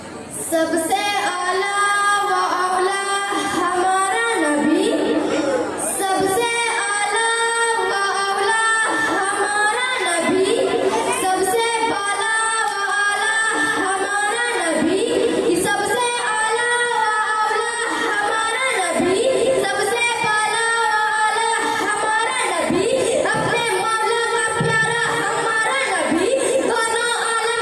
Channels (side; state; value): both; identical; correlation 1.00